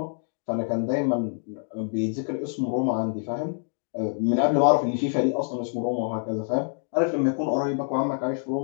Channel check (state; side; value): silent; right; digital silence